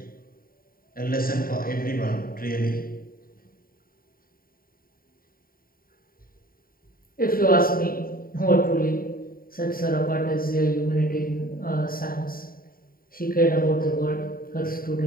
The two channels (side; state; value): right; late; 0.42 ms